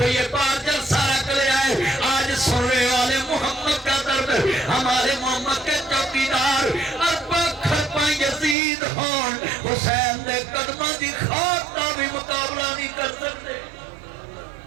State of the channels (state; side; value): drops out; left; at 8.6 s